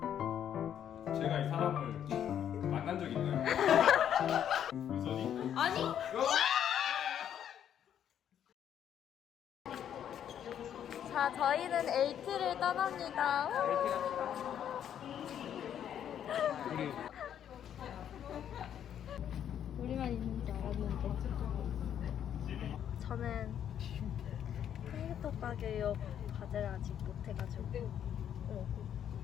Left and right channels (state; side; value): quieter; right; 9.6 dB